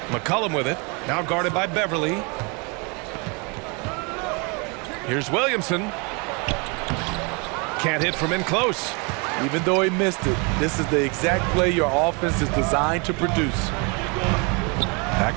McCollum with it. Now guarded by Beverly. Here's Williamson. Can't hit from in close. Even though he missed it, this is the exact play your offense is designed to produce. Back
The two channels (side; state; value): left; quieter; 31.6 dB